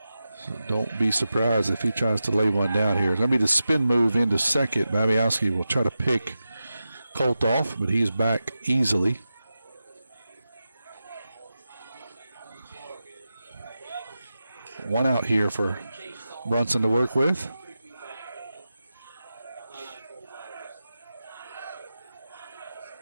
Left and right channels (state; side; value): inverted; both; correlation -0.91